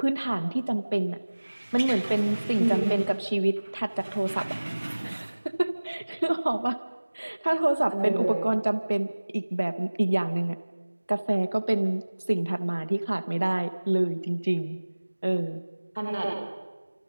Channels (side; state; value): both; inverted; correlation -1.00